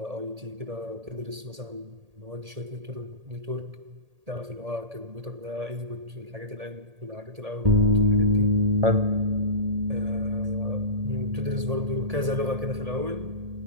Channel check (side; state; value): left; late; 1.8 ms